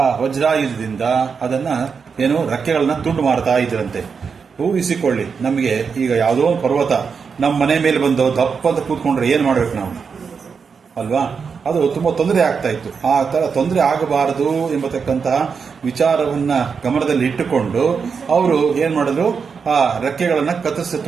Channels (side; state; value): left; quieter; 5.8 dB